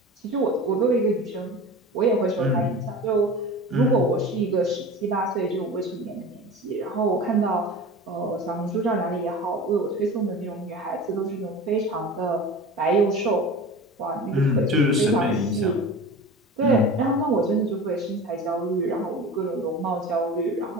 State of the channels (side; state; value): both; normal; correlation 0.34